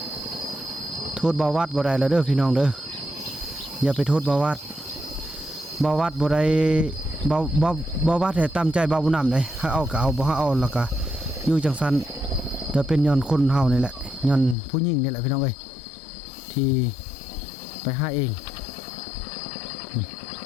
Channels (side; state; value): right; drops out; at 14.6 s